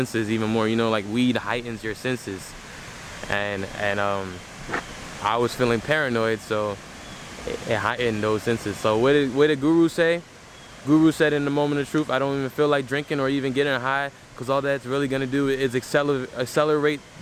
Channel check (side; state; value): both; identical; correlation 1.00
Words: even more. You know, like weed heightens your senses, and I was feeling paranoid, so it heightened those senses. So what did Guru say? Guru said in the moment of truth, I don't even feel like drinking or even getting high, because all that's really gonna do is accelerate